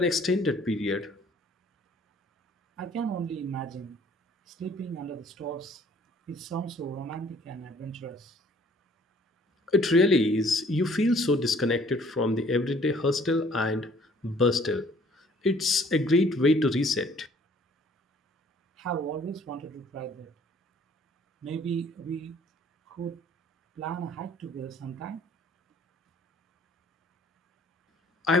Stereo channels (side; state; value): both; normal; correlation 0.57